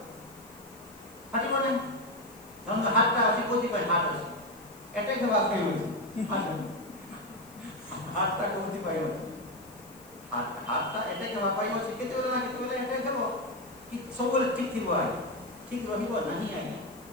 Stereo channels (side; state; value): left; noise; hiss, 22 dB below the sound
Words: ଫାଟିବ ନାହିଁ ଧରନ୍ତୁ ହାତଟା ଅଛି କୋଉଥିପାଇଁ ହାତ ଅଛି ଏଟା ହେବା ପାଇଁ ଅଛି ହାତଟା କୋଉଥିପାଇଁ ଅଛି ହାତଟା ଏଟା ହେବା ପାଇଁ ଅଛି କେତେବେଳେ ନା କେତେବେଳେ ଏଟା ହେବ କି ସବୁବେଳେ ଠିକ ଥିବ ଆଜ୍ଞା ଠିକ ରହିବ ନାହିଁ ଆଜ୍ଞା